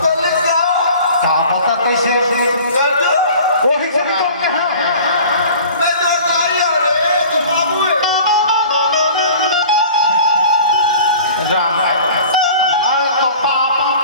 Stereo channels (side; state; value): both; inverted; correlation -0.44